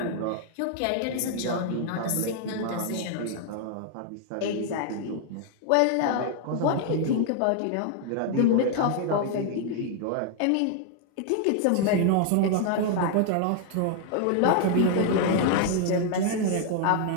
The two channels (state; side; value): different; both; correlation 0.00